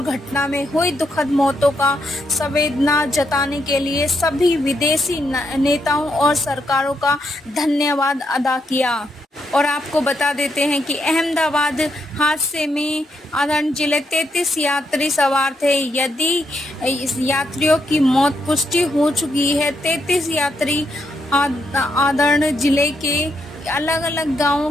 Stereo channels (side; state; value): both; normal; correlation 0.79